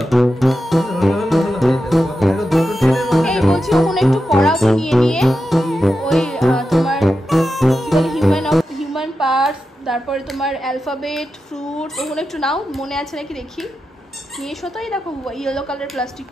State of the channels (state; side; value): normal; both; correlation 0.90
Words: তারপরে তোমার অ্যালফাবেট, ফ্রুট, ওগুলো একটু নাও, মনে আছে নাকি দেখি। নিয়ে এসো তো, এই দেখো ইয়েলো কালার